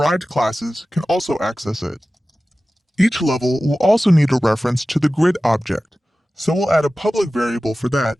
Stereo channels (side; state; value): both; normal; correlation 0.96